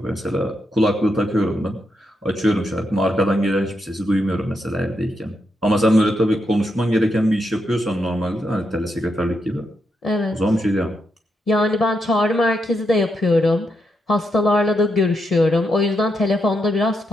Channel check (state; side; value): normal; both; correlation 0.82